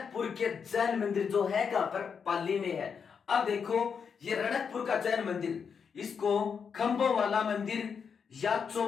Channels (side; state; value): right; quieter; 6.4 dB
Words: के जैन मंदिर जो है कहां पर? पाली में है। अब देखो ये रणकपुर का जैन मंदिर, इसको खंभों वाला मंदिर या